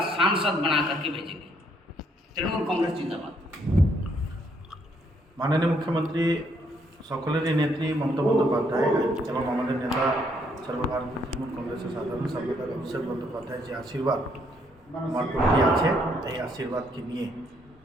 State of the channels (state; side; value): normal; both; correlation 0.70